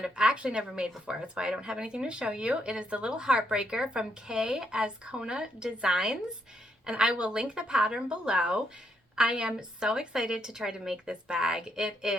I've actually never made before. That's why I don't have anything to show you. It is the Lil Heartbreaker from Azcona Designs, and I will link the pattern below. I am so excited to try to make this bag. It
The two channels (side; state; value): both; normal; correlation 0.75